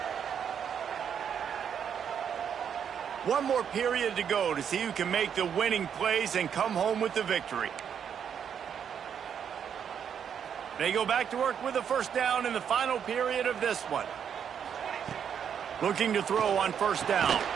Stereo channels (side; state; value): left; quieter; 8.0 dB